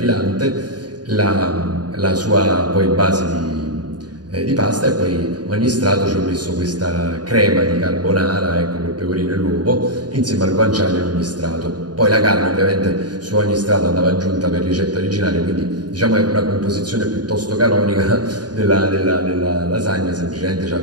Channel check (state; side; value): late; left; 0.69 ms